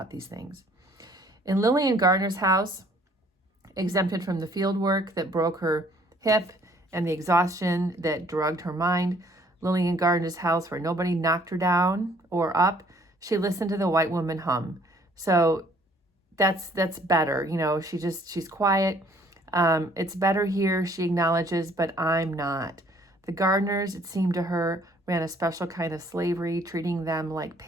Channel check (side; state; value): both; normal; correlation 0.60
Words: these things. In Lillian Gardner's house, exempted from the field work that broke her hip and the exhaustion that drugged her mind, Lillian Gardner's house where nobody knocked her down or up, she listened to the white woman hum. So that's better. You know, she's quiet. It's better here, she acknowledges, but I'm not. The Gardners, it seemed to her, ran a special kind of slavery, treating them like